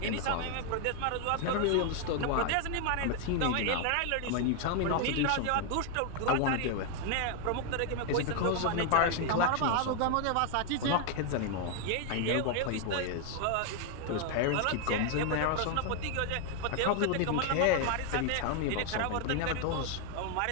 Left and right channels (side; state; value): both; different; correlation 0.00